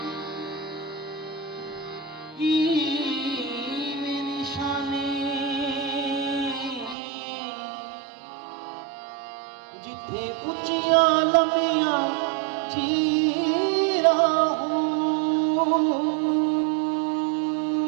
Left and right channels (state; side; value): drops out; left; at 7.0 s